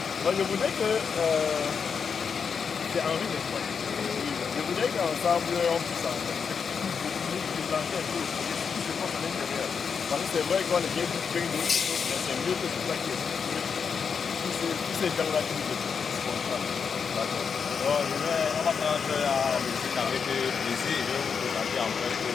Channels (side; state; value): right; quieter; 6.2 dB